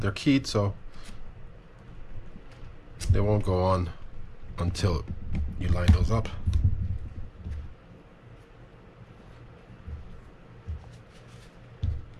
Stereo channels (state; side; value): identical; both; correlation 1.00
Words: keyed, so they won't go on until you line those up.